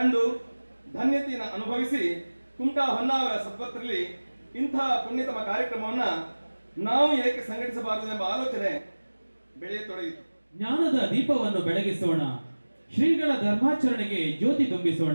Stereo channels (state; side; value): inverted; both; correlation -1.00